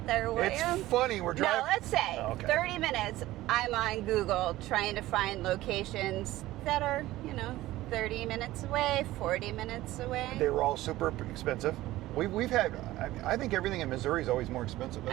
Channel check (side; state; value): left; quieter; 16.5 dB